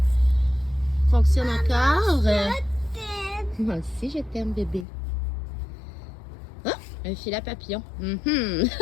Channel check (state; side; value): drops out; right; at 4.9 s